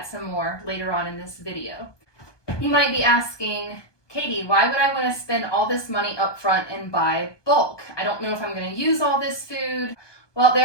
some more later on in this video. You might be asking, Katie, why would I want to spend all this money up front and buy bulk? I don't know if I'm going to use all this food. Well,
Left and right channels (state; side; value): late; right; 1.2 ms